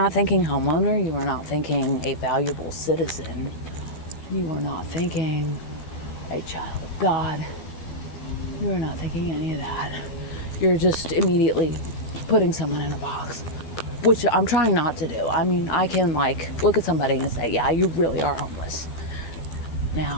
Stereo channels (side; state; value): right; late; 12 ms